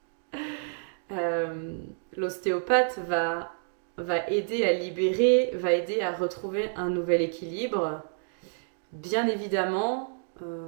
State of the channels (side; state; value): left; silent; digital silence